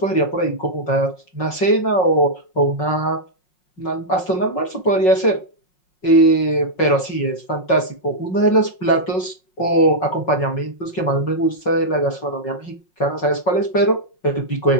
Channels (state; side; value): late; right; 5.4 ms